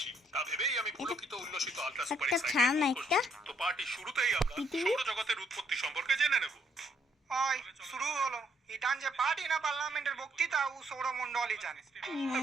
তা ভেবেই আমি পুলকিত উল্লসিত আল্ট্রা সুপার একটা এক্সাইটেড ছান বোধ একটা করছি। তো পার্টির শুরুতেই আমরা পৃথিবী। সৌরজগতের উৎপত্তি সম্পর্কে জেনে নেব। হয় শুরু হলো ইটান যে পার্টি না পার্লামেন্টের বক্তৃতা ও সৌরমণ্ডলই জানে।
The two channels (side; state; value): both; normal; correlation 0.70